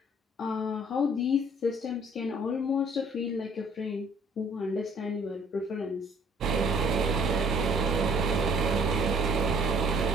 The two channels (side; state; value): both; normal; correlation 0.58